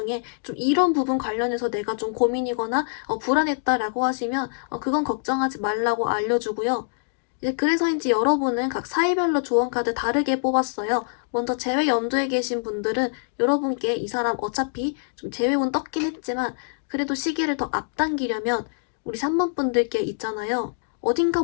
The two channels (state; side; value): silent; right; digital silence